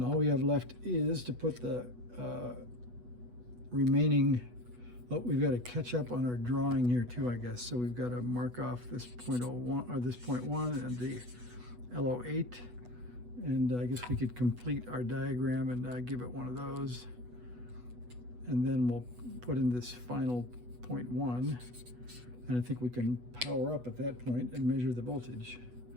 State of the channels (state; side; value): late; left; 8.2 ms